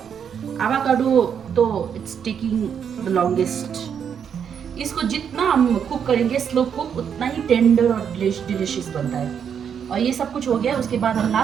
एवोकाडो तो इट्स टेकिंग द लॉन्गेस्ट। इसको जितना हम कुक करेंगे स्लो कुक, उतना ही टेंडर और डिलिशियस बनता है। और ये सब कुछ हो गया, उसके बाद हम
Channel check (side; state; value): left; quieter; 7.8 dB